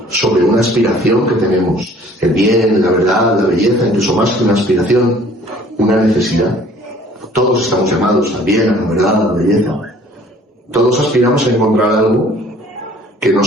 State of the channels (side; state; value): both; normal; correlation 0.54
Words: sobre una aspiración que tenemos. El bien, la verdad, la belleza, incluso más que una aspiración, una necesidad. Todos estamos llamados al bien, a la verdad, a la belleza. Todos aspiramos a encontrar algo que no